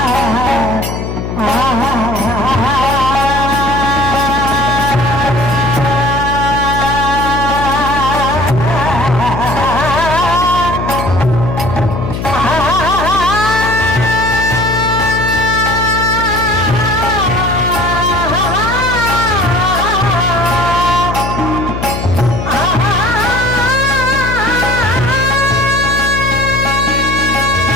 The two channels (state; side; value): noise; left; hum, 4 dB below the sound